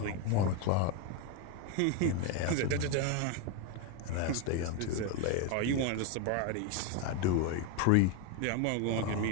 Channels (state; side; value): different; both; correlation 0.02